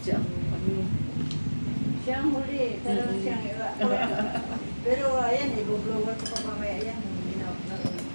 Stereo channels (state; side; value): inverted; both; correlation -1.00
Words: siya ang ano. Siya ang huli, pero siyang iba. Pero ayan, i-blower ko pa mamaya yan.